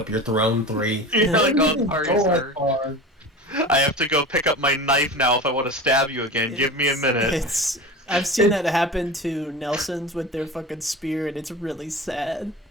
your throne 3. you're like, oh, sorry, Go that sir. far. I have to go pick up my knife now if I want to stab you again. Give me a minute. I've seen that happen to Nelsons with their fucking spear, and it's really sad.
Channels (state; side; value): normal; both; correlation 0.32